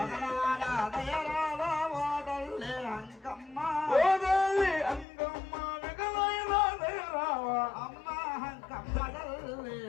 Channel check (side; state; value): right; drops out; at 5.1 s